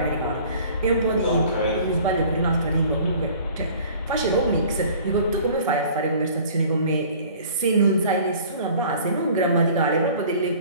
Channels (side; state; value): both; inverted; correlation -0.49